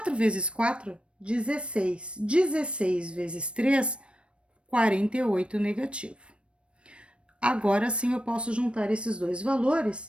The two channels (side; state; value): left; late; 0.059 ms